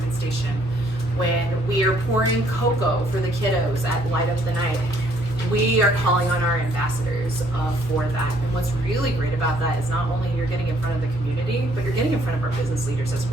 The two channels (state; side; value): normal; both; correlation 0.64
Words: Station, when we are pouring cocoa for the kiddos at Light Up the Night, we are calling on our ambassadors for that. And what's really great about that is not only you're getting in front of the community, but you're getting in front of our business leaders as